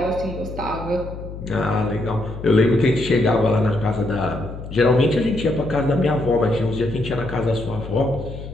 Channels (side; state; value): left; noise; hum, 11 dB below the sound